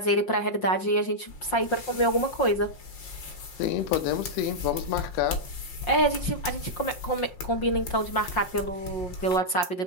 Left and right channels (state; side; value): late; right; 5.6 ms